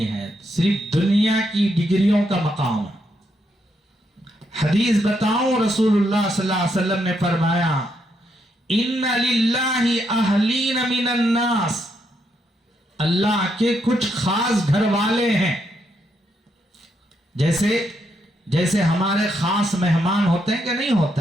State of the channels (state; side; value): normal; both; correlation 0.78